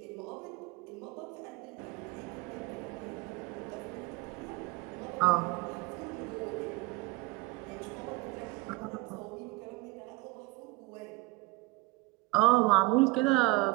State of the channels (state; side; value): quieter; left; 22.1 dB